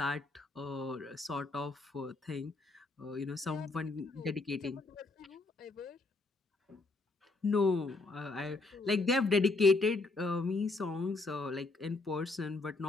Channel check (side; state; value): right; quieter; 3.4 dB